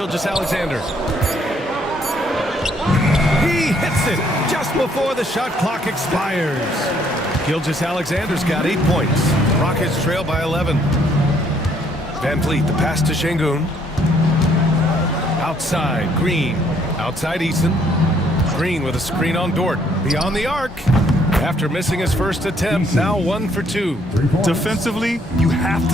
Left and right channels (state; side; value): normal; both; correlation 0.66